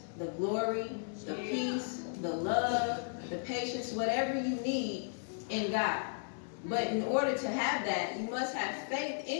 the glory, the peace, the love, the patience, whatever you need in God. But in order to have that, you must have faith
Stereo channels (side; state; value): right; silent; digital silence